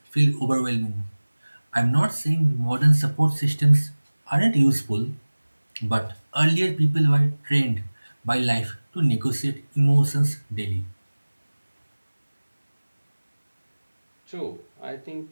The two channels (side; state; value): both; inverted; correlation -1.00